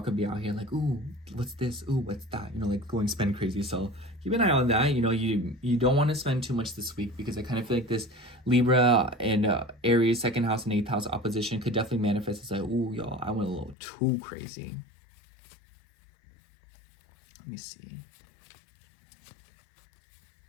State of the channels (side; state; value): right; drops out; at 13.8 s